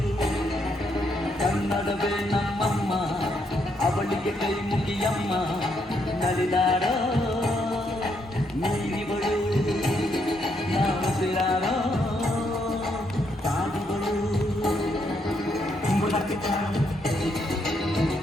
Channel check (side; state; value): both; normal; correlation 0.76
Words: ಕನ್ನಡವೇ ನಮ್ಮಮ್ಮ ಅವಳಿಗೆ ಕೈ ಮುಗಿಯಮ್ಮ ನಲಿದಾಡೋ ನೀರಿಗಳು ನಾವು ಸಿರಾಡೋ ಸಾಧುಗಳು.